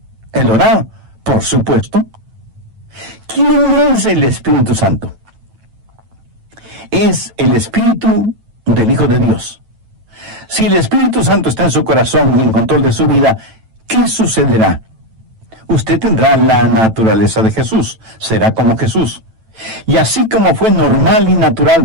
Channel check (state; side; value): late; left; 9.1 ms